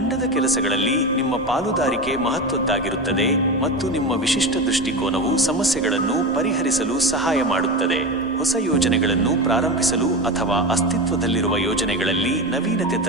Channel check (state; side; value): normal; both; correlation 0.22